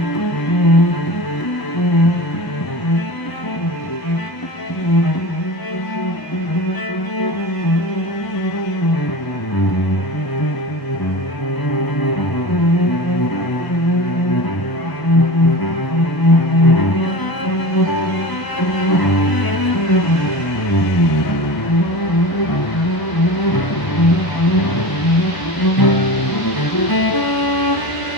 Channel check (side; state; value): right; late; 1.0 ms